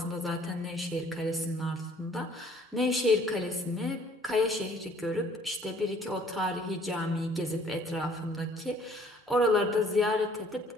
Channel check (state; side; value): normal; both; correlation 0.57